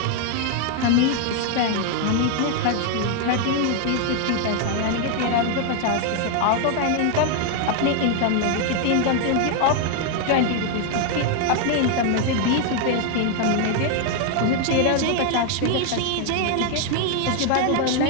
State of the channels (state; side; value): different; both; correlation 0.01